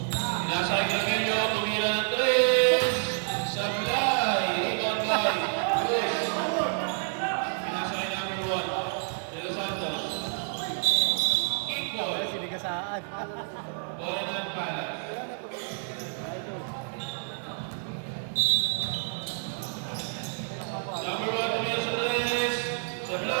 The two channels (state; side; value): silent; left; digital silence